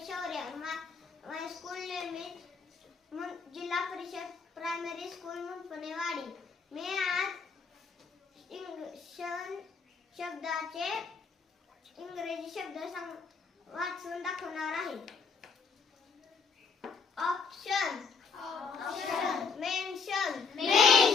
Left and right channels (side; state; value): right; quieter; 5.3 dB